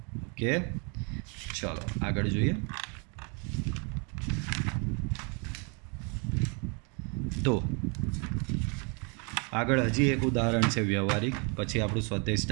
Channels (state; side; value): quieter; left; 34.9 dB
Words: ઓકે, ચલો આગળ જોઈએ. તો આગળ હજી એક ઉદાહરણ છે વ્યવહારિક, પછી આપણું સ્વાધ્યાય